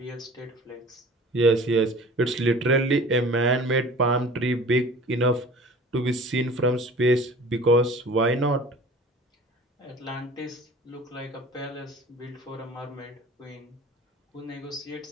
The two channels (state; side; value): normal; both; correlation 0.44